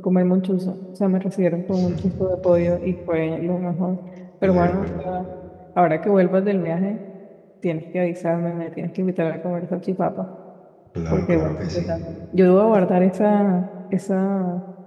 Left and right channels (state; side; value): identical; both; correlation 1.00